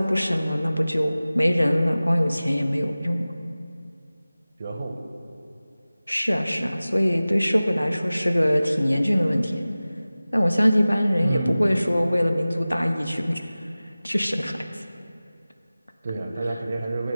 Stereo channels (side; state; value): both; inverted; correlation -0.97